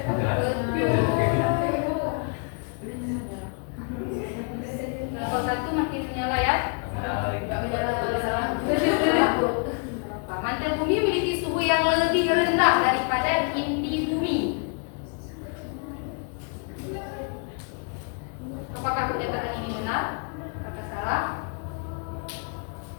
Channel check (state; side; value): quieter; right; 39.7 dB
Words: Kelompok 1 makin menyala ya. Mantel bumi memiliki suhu yang lebih rendah daripada inti bumi. Apakah pernyataan ini benar? Apakah salah?